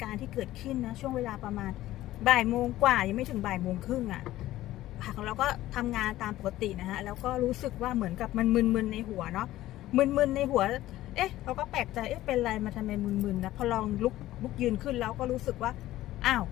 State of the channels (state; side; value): quieter; right; 15.2 dB